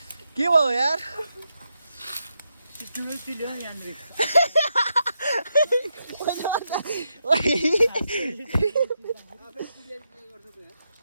के भयो यार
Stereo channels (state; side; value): inverted; both; correlation -0.83